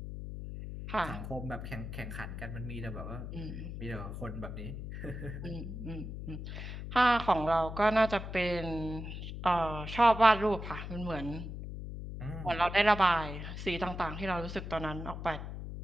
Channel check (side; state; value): left; noise; hum, 7 dB below the sound